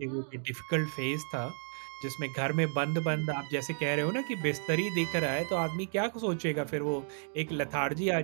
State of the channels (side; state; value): left; silent; digital silence